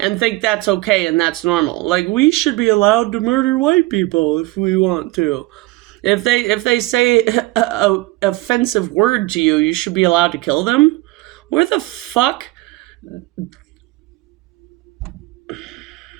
think that's okay and that's normal. Like, we should be allowed to murder white people if we want to. If they say a offensive word to you, you should be allowed to kill them? Where the fuck?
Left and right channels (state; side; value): quieter; left; 20.4 dB